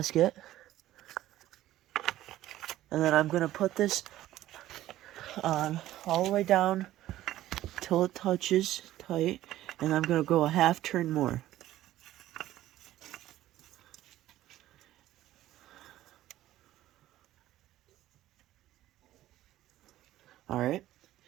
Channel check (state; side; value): quieter; left; 14.4 dB